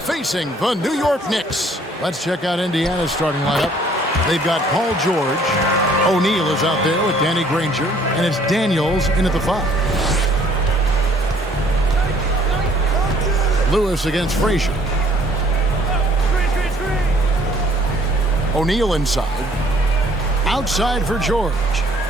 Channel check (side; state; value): both; normal; correlation 0.59